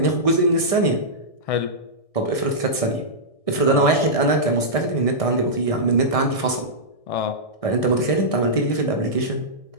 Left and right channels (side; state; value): right; late; 1.6 ms